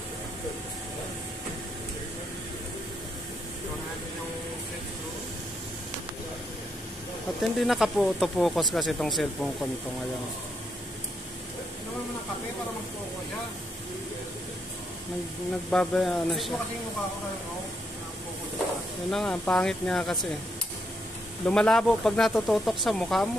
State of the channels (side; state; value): both; normal; correlation 0.78